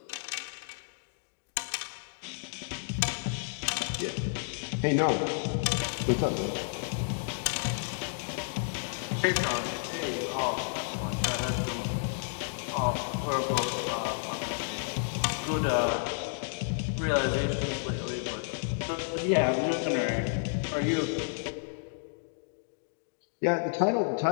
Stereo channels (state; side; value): silent; right; digital silence